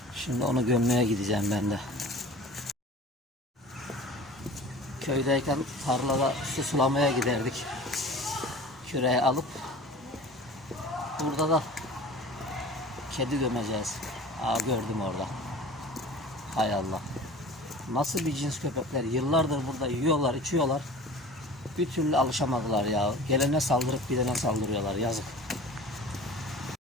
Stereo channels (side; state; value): both; normal; correlation 0.40